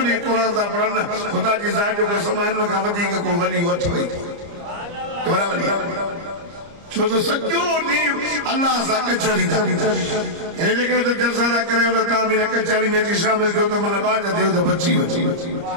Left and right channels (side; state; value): left; late; 30 ms